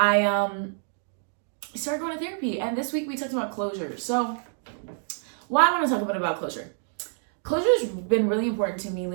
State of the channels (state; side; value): silent; left; 60 dB below the other